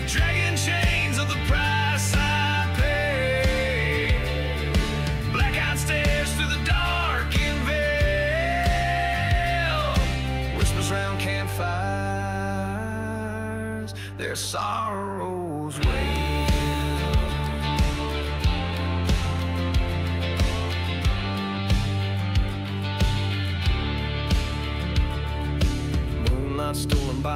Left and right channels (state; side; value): identical; both; correlation 1.00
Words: dragging chains of the price I pay. Blackout stairs through the darkened veil, whispers round campfires, their sorrows wail. Moonlight stolen